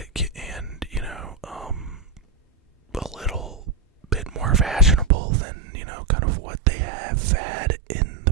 and, a little bit more fashionable than, kind of what they have had in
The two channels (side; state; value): left; drops out; at 5.1 s